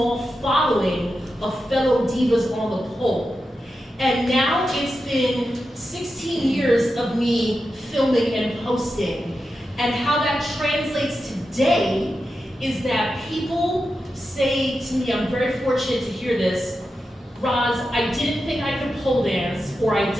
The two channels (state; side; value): normal; both; correlation 0.90